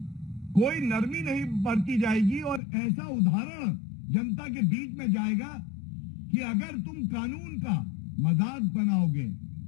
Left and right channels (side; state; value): right; drops out; at 2.6 s